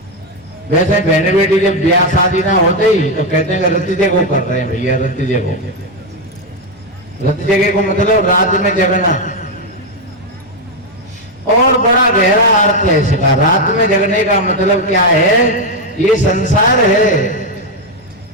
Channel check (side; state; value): both; normal; correlation 0.05